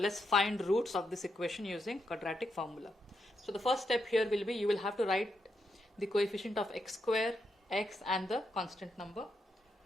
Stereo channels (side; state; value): both; normal; correlation 0.82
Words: find roots of this equation using quadratic formula. So the first step here will be, you will have to write the coefficient of x square, x and the constant number.